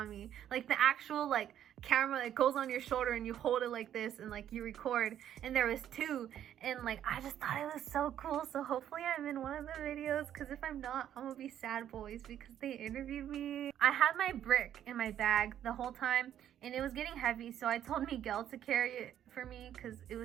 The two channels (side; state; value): left; quieter; 10.6 dB